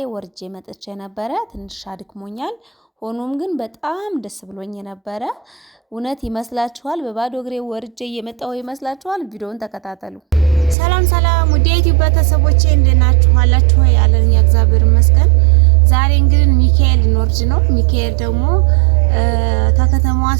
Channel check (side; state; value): left; drops out; at 10.8 s